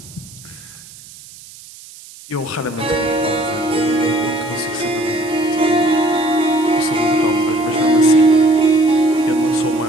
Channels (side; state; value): right; noise; hiss, 20 dB below the sound